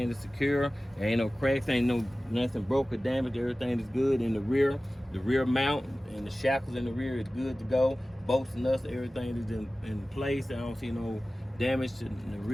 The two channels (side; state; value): both; normal; correlation 0.97